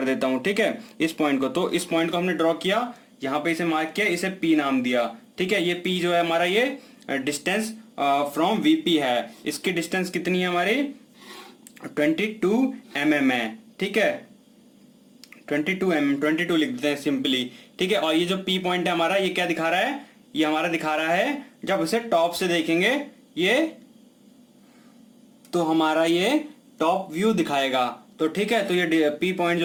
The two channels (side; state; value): both; identical; correlation 1.00